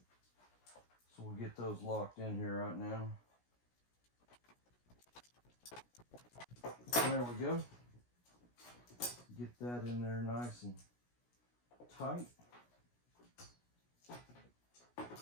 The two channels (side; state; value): right; late; 17 ms